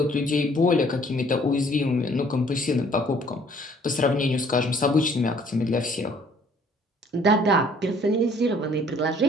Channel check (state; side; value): normal; both; correlation 0.59